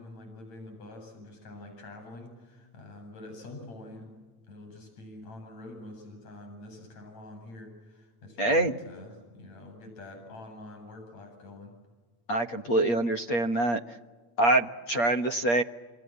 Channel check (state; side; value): late; right; 8.5 ms